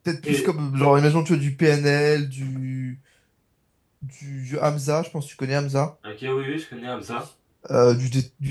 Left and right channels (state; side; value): identical; both; correlation 1.00